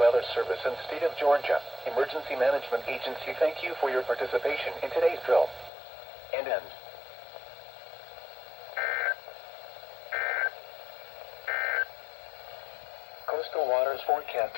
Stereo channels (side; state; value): right; drops out; at 5.7 s